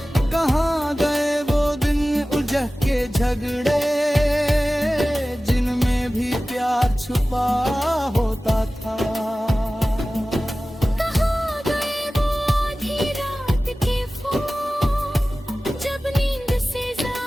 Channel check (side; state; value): both; normal; correlation 0.97